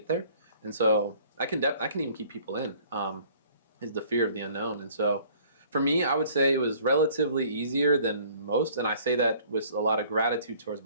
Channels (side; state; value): both; inverted; correlation -0.55